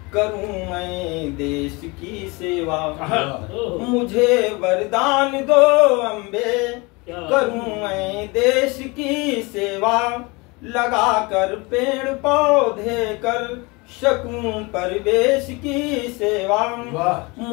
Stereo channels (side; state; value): right; quieter; 26.2 dB